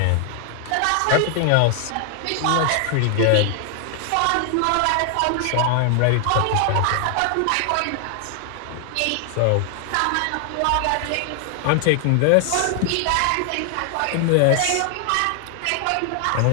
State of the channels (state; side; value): different; both; correlation 0.00